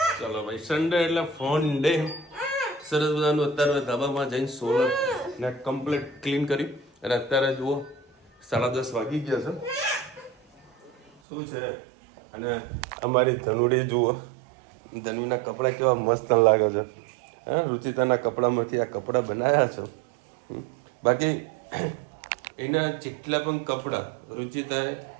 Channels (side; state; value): left; drops out; at 11.1 s